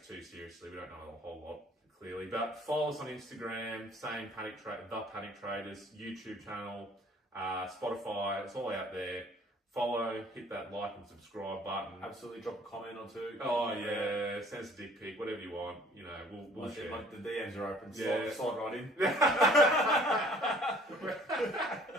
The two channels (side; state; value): both; normal; correlation 0.55